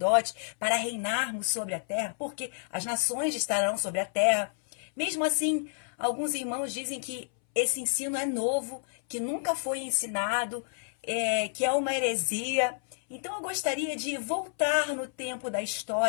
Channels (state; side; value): silent; right; 58 dB below the other